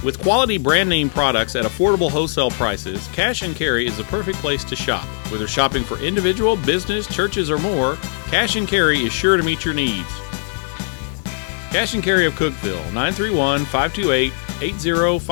With quality brand name products at affordable wholesale prices, Cash and Carry is the perfect place to shop. Whether shopping for individual, business, churches, or more, Cash and Carry is sure to meet your needs. Cash and Carry of Cookeville,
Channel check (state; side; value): silent; right; digital silence